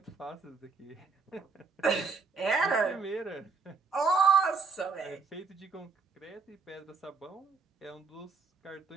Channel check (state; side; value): quieter; left; 4.7 dB